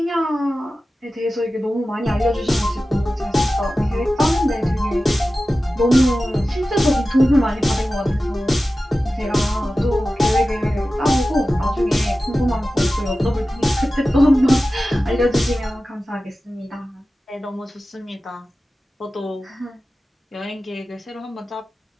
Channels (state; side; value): normal; both; correlation 0.94